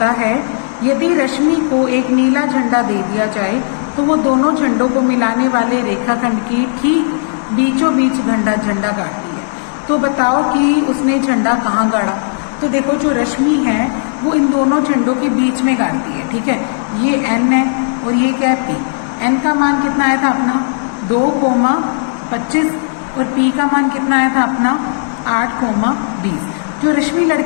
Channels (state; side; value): silent; right; digital silence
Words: है यदि रश्मि को एक नीला झंडा दे दिया जाए तो वो दोनों झंडों को मिलाने वाले रेखाखंड की ठीक बीचों बीच झंडा गाड़ती है। तो बताओ कि उसने झंडा कहाँ गाड़ा। तो देखो जो रश्मि है वो इन दोनों झंडों के बीच में गाड़ती है, ठीक है। ये n है और ये क्या है p। n का मान कितना आया था अपना 2,25 और p का मान कितना आया था अपना 8,20। जो रश्मि